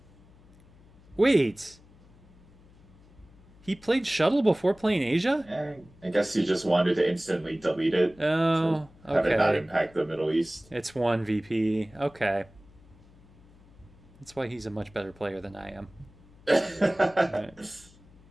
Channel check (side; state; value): left; noise; hum, 26 dB below the sound